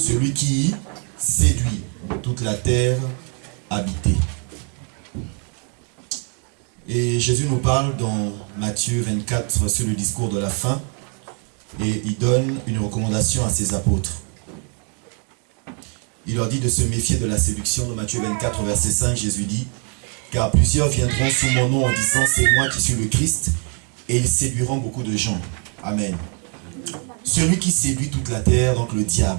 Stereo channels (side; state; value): left; quieter; 39.8 dB